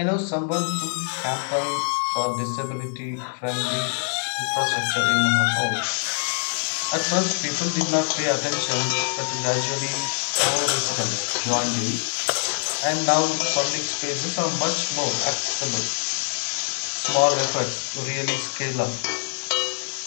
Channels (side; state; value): right; silent; 62 dB below the other